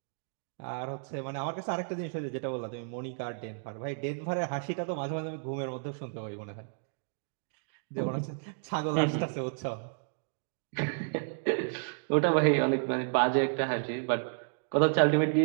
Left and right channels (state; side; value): silent; left; digital silence